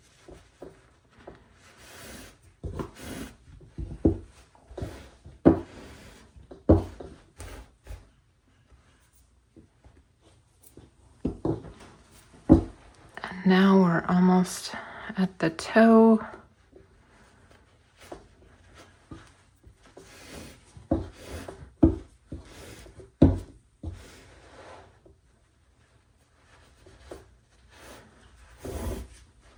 Now we're almost at the toe.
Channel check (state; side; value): identical; both; correlation 1.00